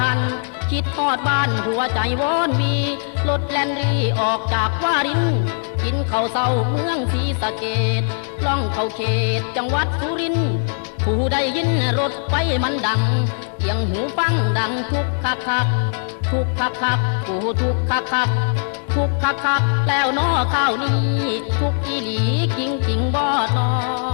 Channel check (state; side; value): silent; right; digital silence